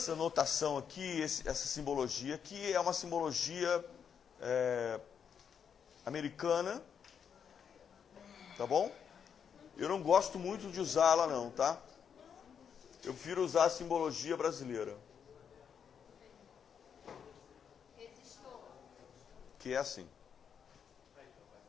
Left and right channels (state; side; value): quieter; right; 7.4 dB